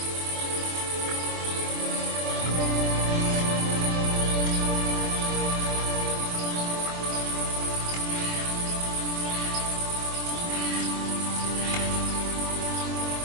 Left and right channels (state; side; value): late; left; 24 ms